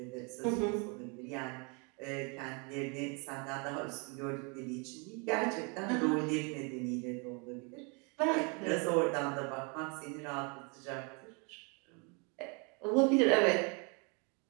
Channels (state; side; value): quieter; left; 33.2 dB